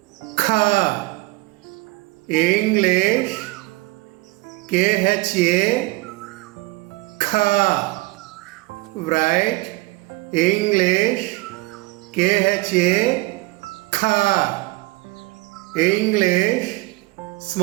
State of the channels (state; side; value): quieter; left; 22.4 dB